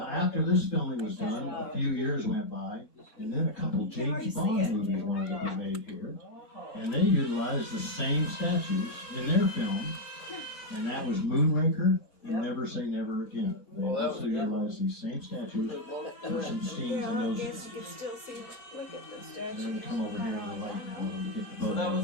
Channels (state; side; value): normal; both; correlation 0.02